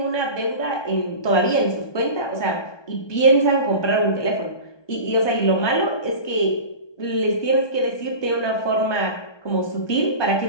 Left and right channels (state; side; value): late; right; 1.2 ms